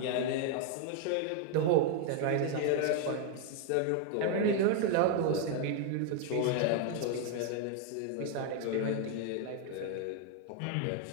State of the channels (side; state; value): both; different; correlation 0.01